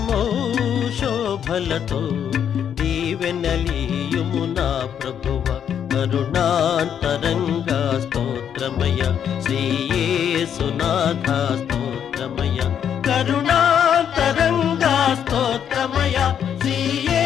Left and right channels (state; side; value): quieter; right; 8.7 dB